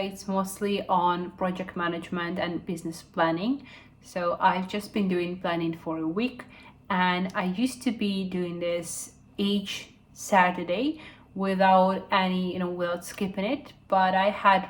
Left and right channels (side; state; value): both; identical; correlation 1.00